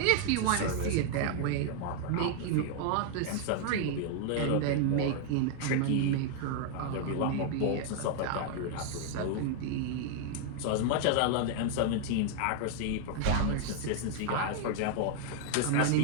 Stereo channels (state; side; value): different; both; correlation 0.00